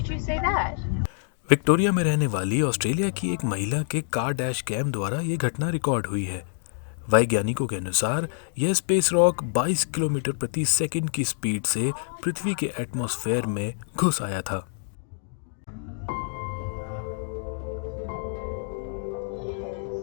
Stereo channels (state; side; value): silent; right; digital silence